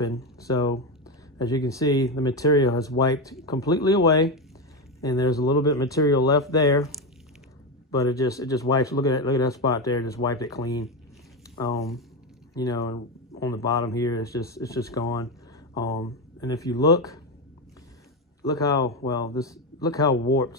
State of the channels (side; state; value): both; normal; correlation 0.13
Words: So as you can see, the material has wiped completely away, and there's a little bit of material left there, but it just wipes. Look at that spot there, just wiped it clean. You know, and on the bottom here, it's just gone. And if you look how